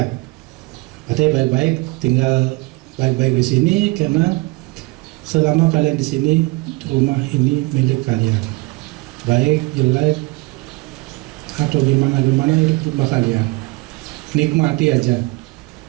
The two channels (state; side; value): quieter; left; 23.9 dB